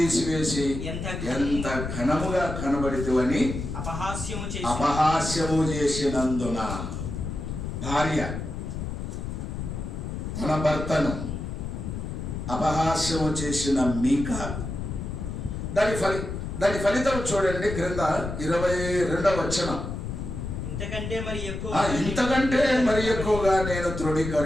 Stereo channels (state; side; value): noise; left; rumble, 5 dB below the sound